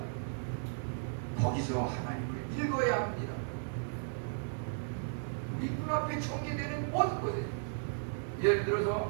거기서 하나님을 읽어야 합니다. 우리 눈앞에 전개되는 모든 곳에, 예를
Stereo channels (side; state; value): left; silent; digital silence